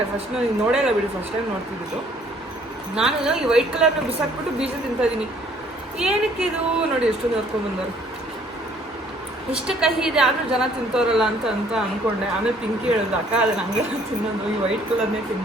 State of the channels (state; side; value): normal; both; correlation 0.60